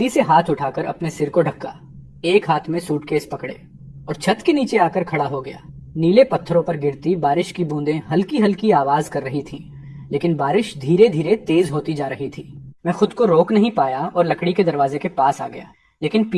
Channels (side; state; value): both; identical; correlation 1.00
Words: से हाथ उठाकर अपने सिर को ढका, एक हाथ में सूटकेस पकड़े और छत के नीचे आकर खड़ा हो गया। नीले पत्थरों पर गिरती बारिश की बूंदें हल्की हल्की आवाज कर रही थीं, लेकिन बारिश धीरे धीरे तेज होती जा रही थी। मैं खुद को रोक नहीं पाया और लकड़ी के दरवाजे के पास आ गया, लेकिन